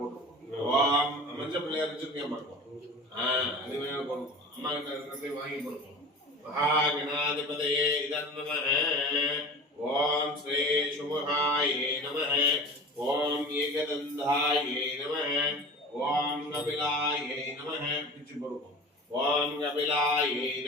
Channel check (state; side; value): normal; both; correlation 0.36